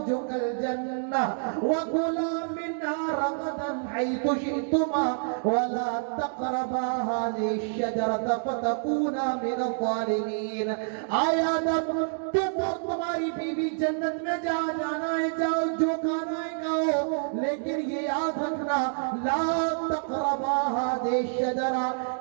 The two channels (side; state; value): left; silent; digital silence